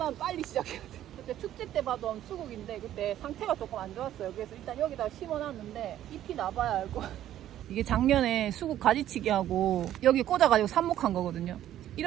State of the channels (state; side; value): quieter; left; 12.2 dB